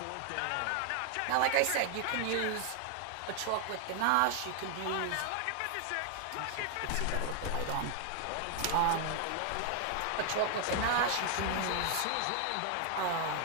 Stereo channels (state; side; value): different; both; correlation 0.00